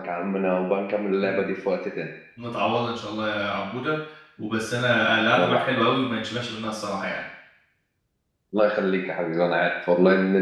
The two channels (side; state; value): both; identical; correlation 1.00